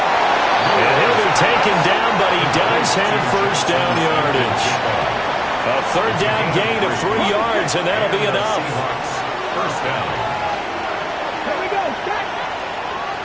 And he'll be taken down, but he does have first down yardage. A 3rd down gain of 3 yards, and that'll be enough. First down.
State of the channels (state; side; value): identical; both; correlation 1.00